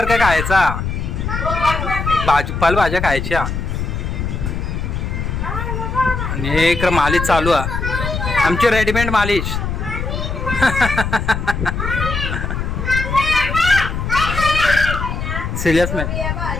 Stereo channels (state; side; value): noise; left; rumble, 3 dB below the sound